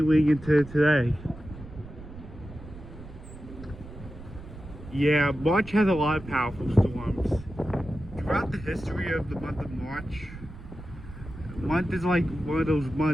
into today. Yeah, March has a lot of powerful storms. Throughout the history of the month of March, month is like one of those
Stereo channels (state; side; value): noise; right; rumble, 15 dB below the sound